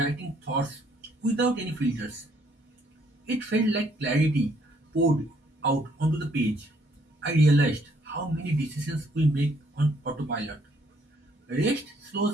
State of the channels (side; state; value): both; normal; correlation 0.67